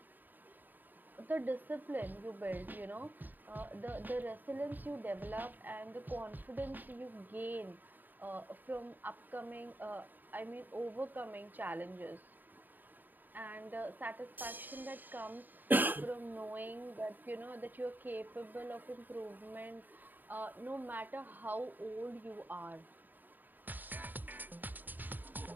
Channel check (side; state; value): left; late; 0.089 ms